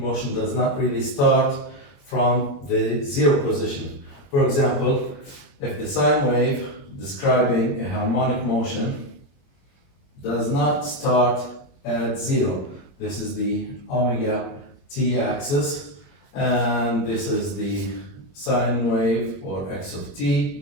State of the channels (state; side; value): late; right; 22 ms